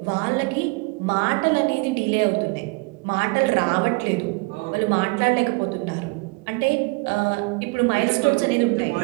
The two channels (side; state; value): left; quieter; 27.3 dB